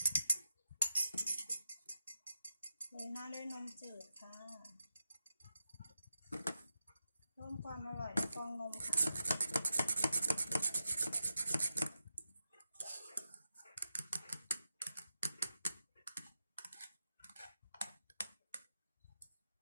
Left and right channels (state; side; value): inverted; both; correlation -0.89